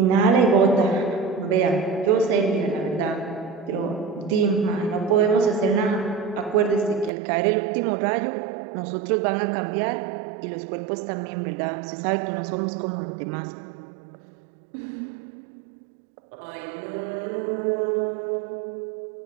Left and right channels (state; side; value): drops out; left; at 7.1 s